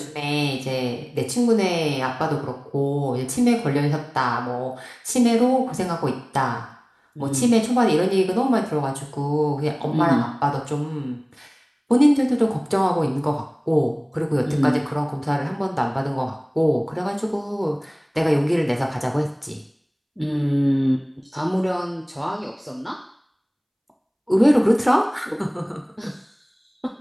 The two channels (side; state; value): both; identical; correlation 1.00